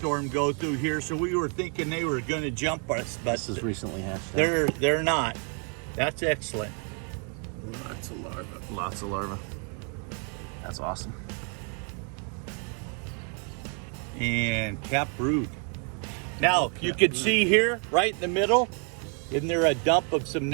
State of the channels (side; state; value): left; quieter; 38.6 dB